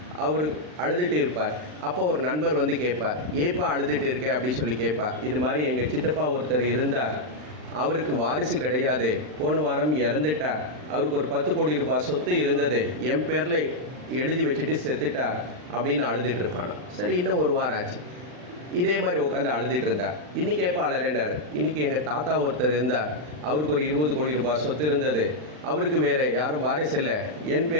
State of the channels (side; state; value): left; late; 40 ms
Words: அவர் அழுதுட்டு இருப்பார். அப்போ ஒரு நண்பர் கேட்பார், ஏப்பா அழுதுட்டு இருக்க அப்படின்னு கேட்பார். இது மாதிரி எங்கள் சித்தப்பா ஒருத்தர் இருந்தார், அவருக்கு வாரிசு கிடையாது, போன வாரம் இறந்துட்டார், அவருக்கு ஒரு 10 கோடி ரூபாய் சொத்து இருந்தது, என் பேரில் எழுதி வச்சுட்டு செத்துட்டார் அப்படின்னு அழுதுட்டு இருப்பானா. சரி, இன்னும் 1 வாரம் ஆச்சு, இதே மாதிரி உட்காந்து அழுதுட்டு இருந்தார். இன்றைக்கி எப்போ அலறினார், இன்றைக்கி எங்கள் தாத்தா ஒருத்தர் இருந்தார், அவருக்கு ஒரு 20 கோடி ரூபாய் சொத்து இருந்தது, அவருக்கு வேறு யாரும் வாரிசு இல்லை, என்